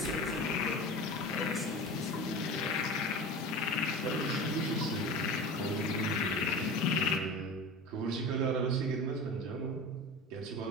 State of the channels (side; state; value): both; normal; correlation 0.31